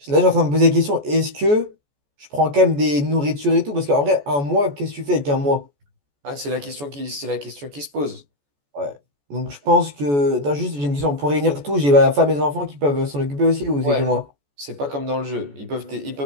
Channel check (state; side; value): late; left; 14 ms